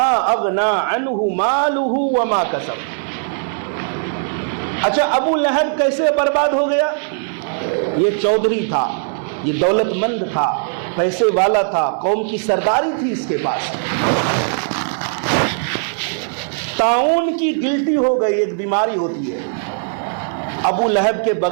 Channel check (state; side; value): silent; left; 66 dB below the other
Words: اغنا عنہ مالہ وما کسب۔ اچھا، ابو لہب کیسے برباد ہو گیا؟ یہ چودھری تھا، یہ دولت مند تھا، پیسے والا تھا، قوم کی سرداری تھی اس کے پاس۔ طاعون کی گلٹی ہو گئی، ایک بیماری ہوتی ہے، ابو لہب کے